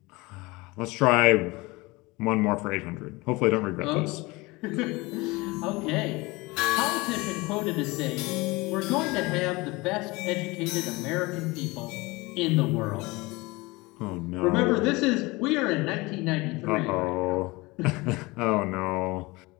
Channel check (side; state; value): right; quieter; 23.0 dB